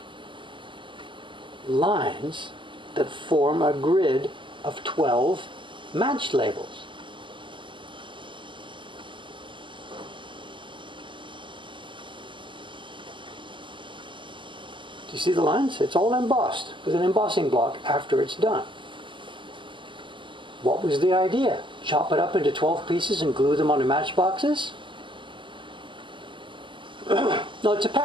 lines that form a grid of 12 match labels. You see the lines? It's all embossed with an embossing block after it's done. What was the idea? Chop it up into 12 pieces and glue them onto matchboxes? No, it's a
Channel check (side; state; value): left; late; 0.24 ms